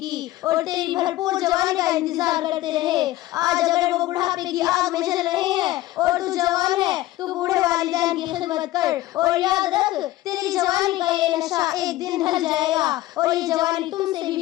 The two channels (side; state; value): right; quieter; 16.5 dB